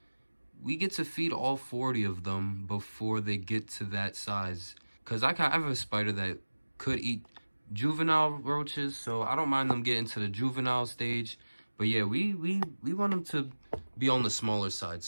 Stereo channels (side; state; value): both; inverted; correlation -1.00